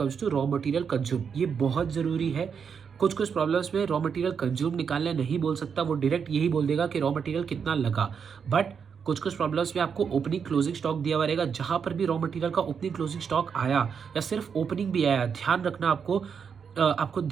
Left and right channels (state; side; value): quieter; left; 6.7 dB